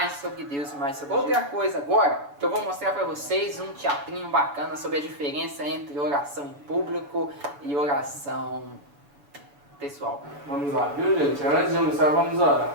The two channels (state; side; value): late; left; 7.1 ms